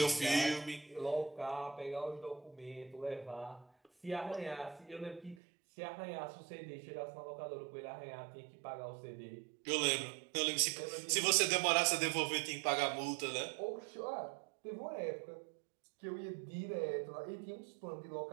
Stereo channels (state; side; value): drops out; left; at 5.4 s